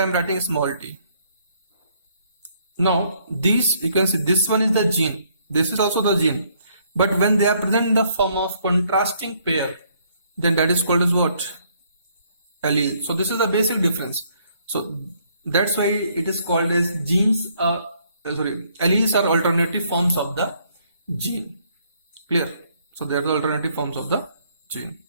am writing small t. Now these, you can see this one is the gene, this is also the gene, but when they are present in the form of contrasting pair, then that is called as what? Allele. So this is the basic difference. So that's why it is called as genes. Alleles are alternative forms of the gene. Clear? So they are the alternative forms of the gene.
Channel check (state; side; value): inverted; both; correlation -0.67